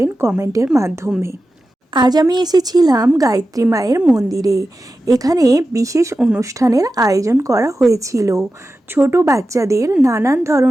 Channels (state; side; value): normal; both; correlation 0.93